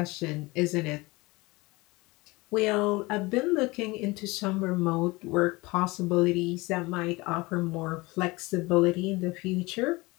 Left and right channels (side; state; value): right; quieter; 23.0 dB